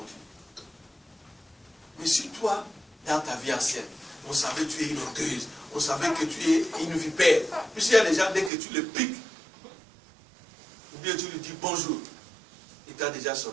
Dieu. Mais si toi, dans ta vie ancienne, on savait que tu es une orgueilleuse, on savait que tu es une vipère, puisqu'il y a des gens, dès que tu le piques, ou bien tu lui dis bonjour, il t'a déjà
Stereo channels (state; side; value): drops out; left; at 8.5 s